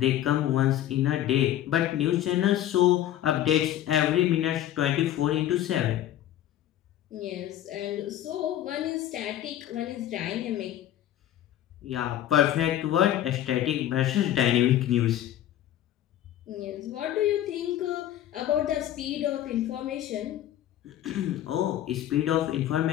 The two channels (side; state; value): right; quieter; 12.1 dB